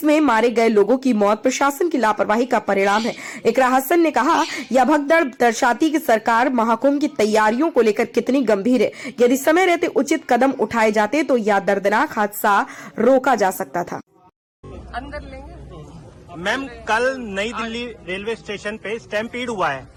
मारे गए लोगों की मौत प्रशासन की लापरवाही का परिणाम है। इकरा हसन ने कहा, यह भगदड़ दर्शाती कि सरकार महाकुंभ की तैयारियों को लेकर कितनी गंभीर है। यदि समय रहते उचित कदम उठाए जाते तो यह दर्दनाक हादसा रोका जा सकता था। अंदर लेंगे। मैम, कल नई दिल्ली रेलवे स्टेशन पे स्टैम्पीड हुआ है,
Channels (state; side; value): identical; both; correlation 1.00